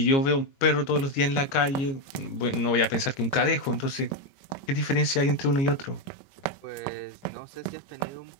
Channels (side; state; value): right; late; 22 ms